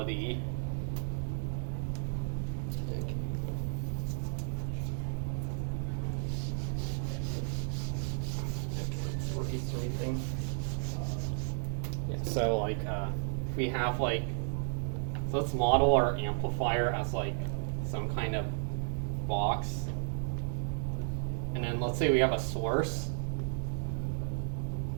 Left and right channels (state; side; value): silent; left; digital silence